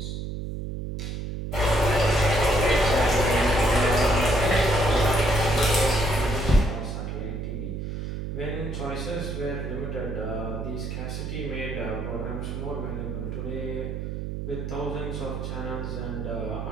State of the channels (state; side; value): noise; right; hum, 5 dB below the sound